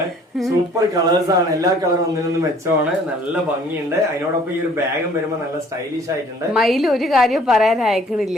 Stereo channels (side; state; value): both; normal; correlation 0.56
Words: സൂപ്പർ കളേഴ്സ് ആണ്. എല്ലാ കളറും ഒന്നിനൊന്നും മെച്ചമാണ്. നല്ല ഭംഗിയുണ്ട്. അതിനോടൊപ്പം ഈ ഒരു ബാഗും വരുമ്പോ നല്ല സ്റ്റൈലിഷ് ആയിട്ടുണ്ട്. മയിൽ ഒരു കാര്യം പറയാൻ